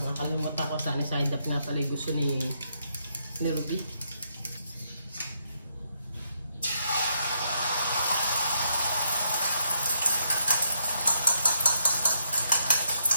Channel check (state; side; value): inverted; both; correlation -0.78